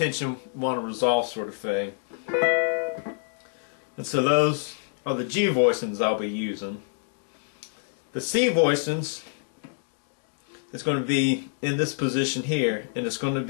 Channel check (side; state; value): right; silent; digital silence